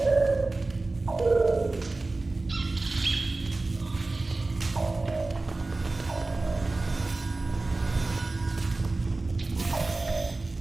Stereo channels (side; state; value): left; quieter; 3.3 dB